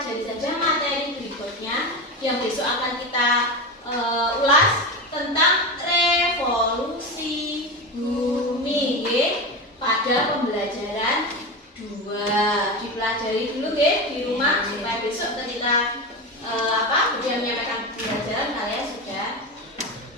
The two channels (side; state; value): both; normal; correlation 0.20